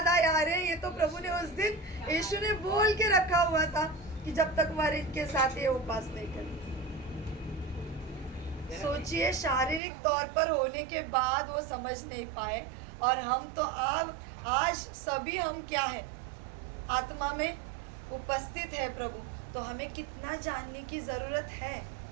आया अरे ये तो प्रभु ने उस दिन यीशु ने बोल के रखा हुआ था कि जब तक वर इनके साथ ये उपवास नहीं करेंगे। सोचिए शारीरिक तौर पर होने के बाद वो समझ नहीं पाए, और हम तो आज सभी हम क्या है, आत्मा में उपस्थित है प्रभु, तो हमें कितना जानने की जरूरत है।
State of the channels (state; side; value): drops out; left; at 9.8 s